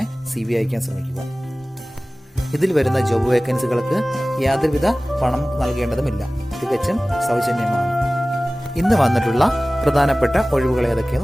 CV അയക്കാൻ ശ്രമിക്കുക. ഇതിൽ വരുന്ന ജോബ് വേക്കൻസികൾക്ക് യാതൊരുവിധ പണം നൽകേണ്ടതുമില്ല, തികച്ചും സൗജന്യമാണ്. ഇന്ന് വന്നിട്ടുള്ള പ്രധാനപ്പെട്ട ഒഴിവുകൾ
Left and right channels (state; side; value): normal; both; correlation 0.98